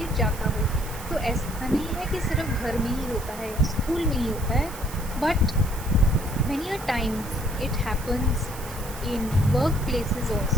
जाता हो। तो ऐसा नहीं है कि सिर्फ घर में ही होता है या स्कूल में ही होता है, but many a times it happens in workplaces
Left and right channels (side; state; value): right; noise; hiss, 14 dB below the sound